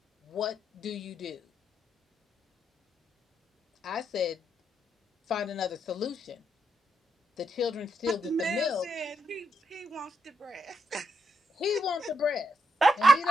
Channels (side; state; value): both; normal; correlation 0.80